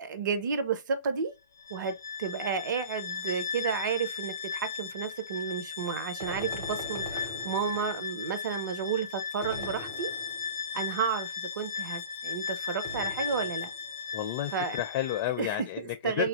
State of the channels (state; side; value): inverted; both; correlation -0.38